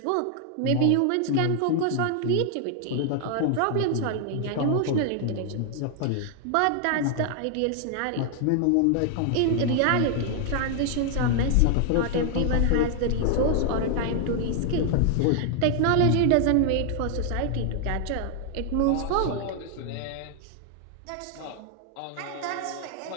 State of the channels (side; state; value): both; different; correlation 0.00